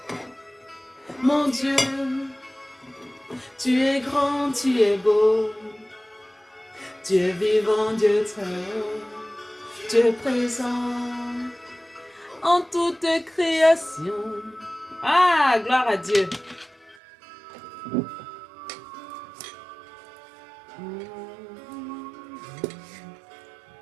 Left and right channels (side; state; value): left; drops out; at 16.9 s